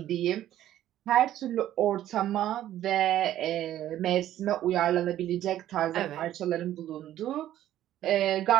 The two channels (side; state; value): left; quieter; 12.6 dB